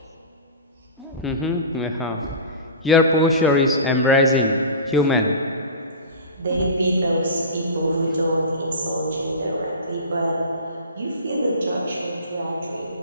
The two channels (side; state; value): both; inverted; correlation -0.32